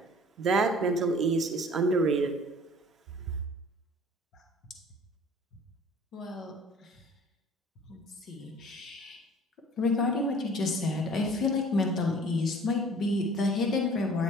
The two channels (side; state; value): both; normal; correlation 0.49